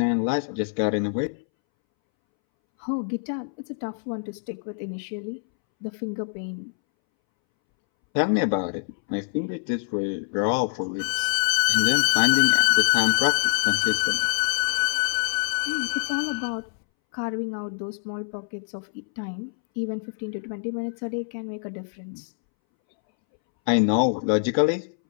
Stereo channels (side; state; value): right; silent; 62 dB below the other